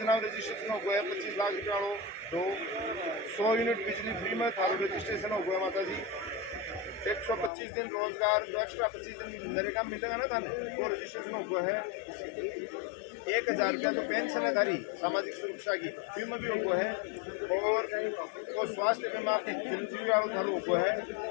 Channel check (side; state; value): right; drops out; at 7.5 s